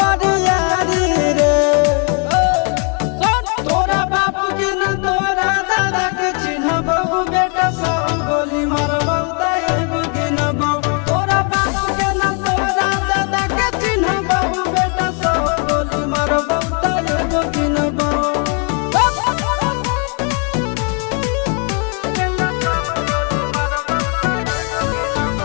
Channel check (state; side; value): quieter; right; 38.1 dB